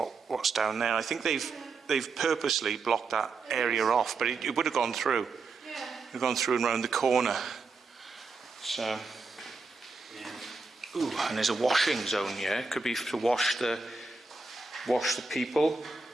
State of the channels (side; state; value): left; quieter; 4.2 dB